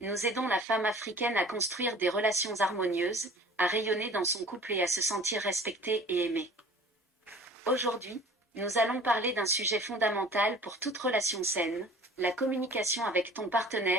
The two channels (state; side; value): normal; both; correlation 0.46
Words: nous aidons la femme africaine à construire des relations harmonieuses, à rayonner dans son couple et à se sentir respectée et aimée. Aujourd'hui, nous allons parler d'un sujet fondamental pour toute relation saine, la communication avec ton